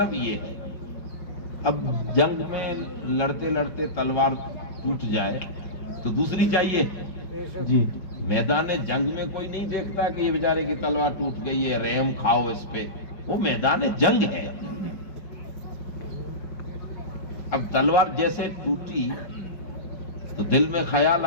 یہ ہے. اب جنگ میں لڑتے لڑتے تلوار ٹوٹ جائے تو دوسری چاہیے. جی, میدان جنگ میں کوئی نہیں دیکھتا کہ یہ بیچارے کی تلوار ٹوٹ گئی ہے, رحم کھاؤ اس پہ. وہ میدان جنگ ہے. اب تلوار جیسے ٹوٹی تو دل میں خیال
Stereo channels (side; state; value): right; late; 5.2 ms